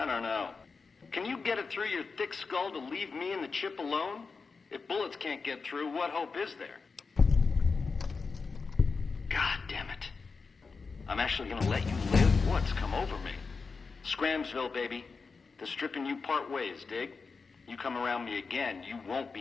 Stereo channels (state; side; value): quieter; right; 4.7 dB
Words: don't know. Can you get it through your thick skull to leave me and the chip alone? If bullets can't get through, what hope is there? God damn it. I'm actually gonna let you live? What's come over me? Scramsville, baby. The stripping you part ways, dig? You come around me again, you won't be